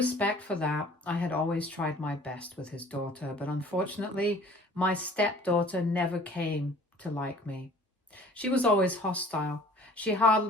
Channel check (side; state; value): both; normal; correlation 0.50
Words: for that, I had always tried my best with his daughter, but unfortunately, my stepdaughter never came to like me. She was always hostile. She